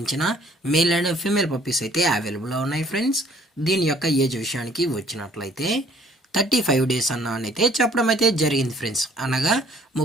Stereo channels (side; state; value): both; normal; correlation 0.57